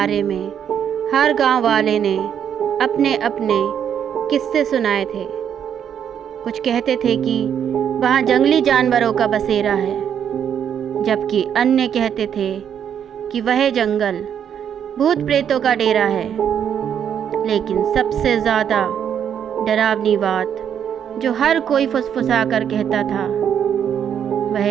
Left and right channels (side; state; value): left; quieter; 8.7 dB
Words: में हर गांव वाले ने अपने अपने किस्से सुनाए थे। कुछ कहते थे कि वहाँ जंगली जानवरों का बसेरा है, जबकि अन्य कहते थे कि वह जंगल भूत प्रेतों का डेरा है। लेकिन सबसे ज़्यादा डरावनी बात जो हर कोई फुसफुसा कर कहता था